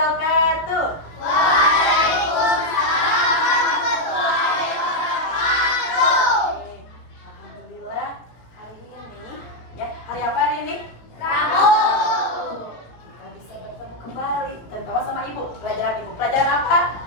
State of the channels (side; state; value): right; late; 17 ms